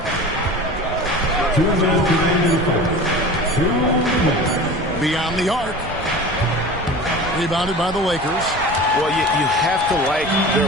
Beyond the arc. Rebounded by the Lakers. Well, you have to like their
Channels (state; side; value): noise; right; rumble, 13 dB below the sound